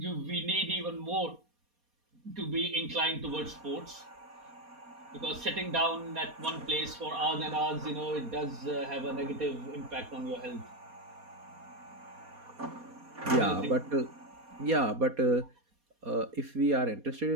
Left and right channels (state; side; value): late; left; 4.2 ms